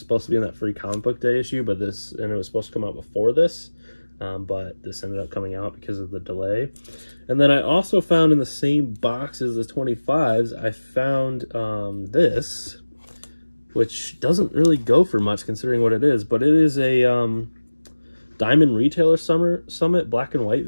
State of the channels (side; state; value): both; inverted; correlation -1.00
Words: to be in that free comic book day issue, but it was supposed to come out before this, but this ended up coming out because of the delay. And then I also found in the same box as the 25s, I found this, which doesn't really go for much considering what it is, but it is a Diamond Retailer Summit black and white